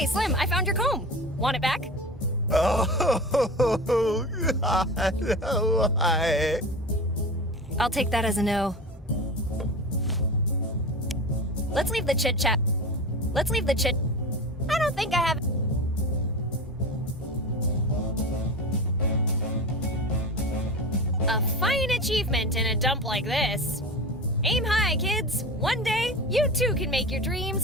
Slim, I found your comb. Want it back? Oh, God, why? I'll take that as a no. Let's leave the chit-chat. Let's leave the chit... I don't think I have... A fine achievement in a dump like this. Aim high, kids. One day, you too can make your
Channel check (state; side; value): normal; both; correlation 0.29